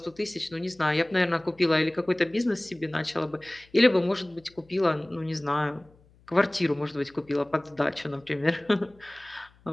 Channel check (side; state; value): left; noise; hum, 29 dB below the sound